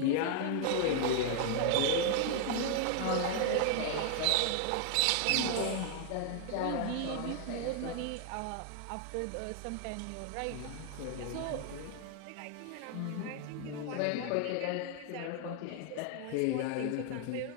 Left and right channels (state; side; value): different; both; correlation 0.00